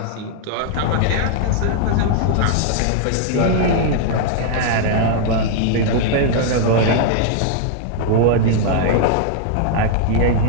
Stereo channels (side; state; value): both; different; correlation -0.01